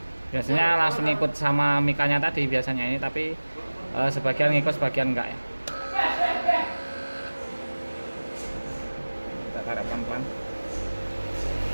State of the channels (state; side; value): inverted; both; correlation -1.00